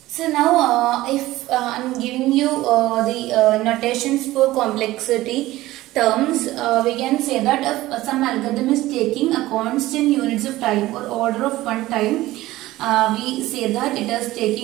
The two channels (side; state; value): left; quieter; 17.0 dB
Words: So now if I'm giving you the notations for complexity terms, we can say that if some algorithm is taking a constant units of time or order of one time, we say that it is